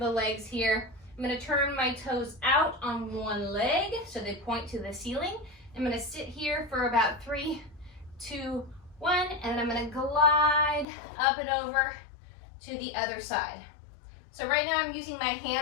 legs here. I'm gonna turn my toes out on one leg so they point to the ceiling. I'm gonna sit here for about 3, 2, 1, and then I'm gonna glide up and over to the other side. So right now I'm using my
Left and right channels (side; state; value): right; drops out; at 10.9 s